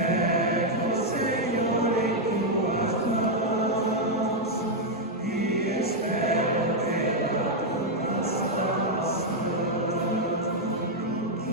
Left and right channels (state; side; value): normal; both; correlation 0.00